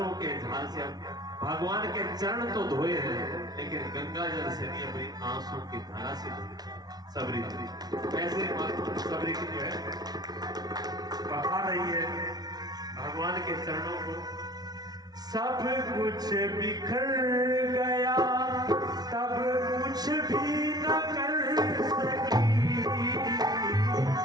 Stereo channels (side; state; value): left; late; 0.19 ms